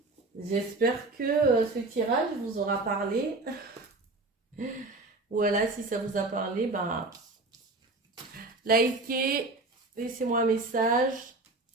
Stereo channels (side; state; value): left; quieter; 3.2 dB